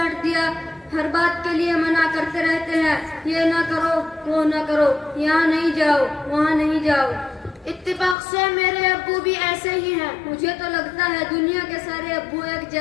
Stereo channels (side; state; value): right; drops out; at 8.2 s